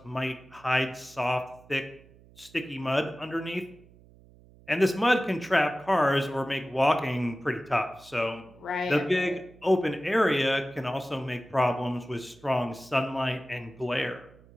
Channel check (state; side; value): noise; right; hum, 25 dB below the sound